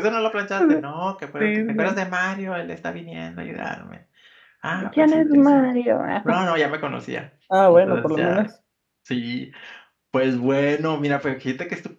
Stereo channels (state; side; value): identical; both; correlation 1.00